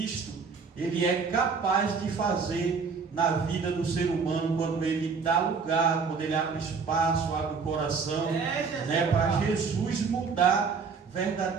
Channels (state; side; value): quieter; left; 5.3 dB